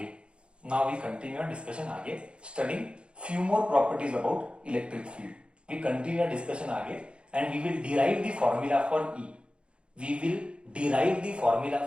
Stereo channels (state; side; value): late; left; 0.057 ms